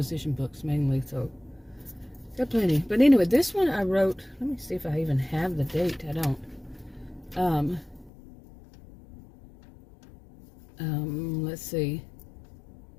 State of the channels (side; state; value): right; drops out; at 8.1 s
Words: books mainly, so got plenty. But anyway, this one I wrote, let me see if I even have the date. I don't. Let's see.